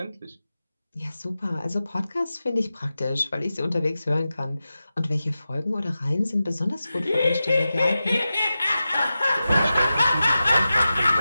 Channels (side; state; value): both; inverted; correlation -0.93